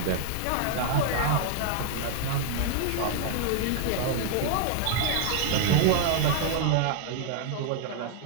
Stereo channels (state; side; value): different; both; correlation 0.00